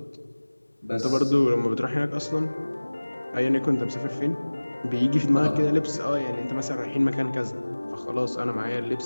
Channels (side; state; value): both; inverted; correlation -1.00